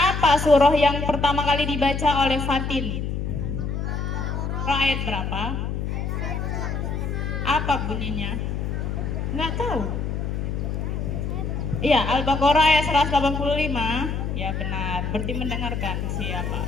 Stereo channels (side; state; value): left; noise; hum, 2 dB below the sound